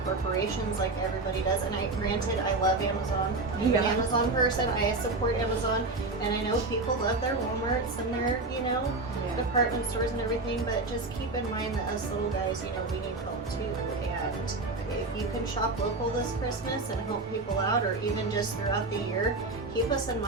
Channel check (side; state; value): left; quieter; 3.3 dB